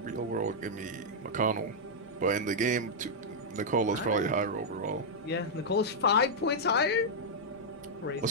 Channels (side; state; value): both; normal; correlation -0.06